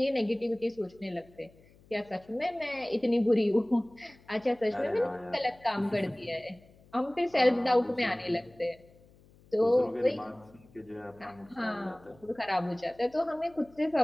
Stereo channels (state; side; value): noise; left; hum, 27 dB below the sound